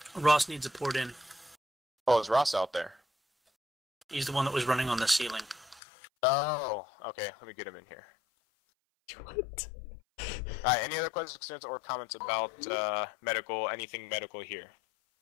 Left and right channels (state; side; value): drops out; right; at 5.8 s